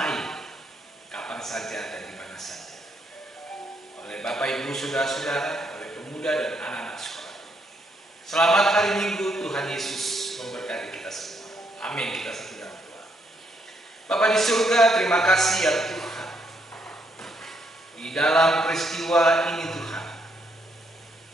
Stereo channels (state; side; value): normal; both; correlation 0.75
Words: kapan saja dan di mana saja, oleh Bapak Ibu saudara-saudara, oleh pemuda dan anak-anak sekolah. Selamat hari Minggu, Tuhan Yesus memberkati kita semua. Amin. Kita satu dalam doa. Bapa di surga, terima kasih ya Tuhan. Di dalam peristiwa ini Tuhan,